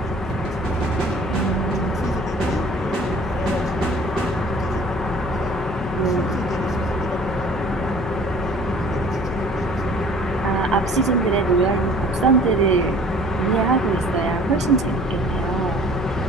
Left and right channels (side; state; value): left; noise; hum, 12 dB below the sound